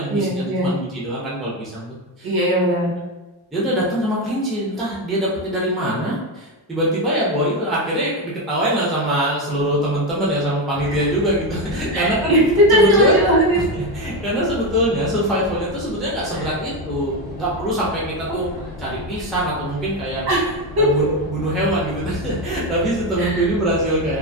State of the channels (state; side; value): normal; both; correlation 0.12